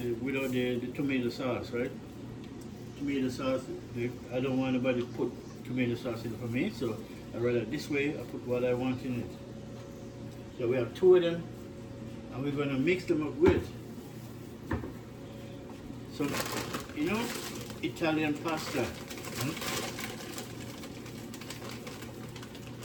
tomato sauce, right? Tomato sauce. I don't want anybody to put tomato sauce in it for me, so I rather this way. I put what I want in it. So we have two of them, and we're gonna mix them up with some, Italian pasta.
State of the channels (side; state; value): both; identical; correlation 1.00